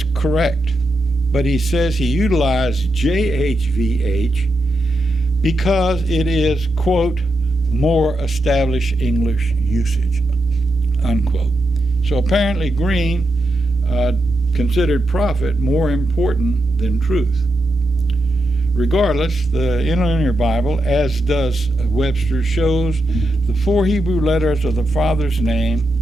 correct, but he says he utilized JHVH because it is, quote, more established English usage, unquote. So apparently Green considered profit more important than truth. Regardless, the Interlinear Bible, as does Webster, shows the four Hebrew letters of the Father's name,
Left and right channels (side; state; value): both; normal; correlation 0.85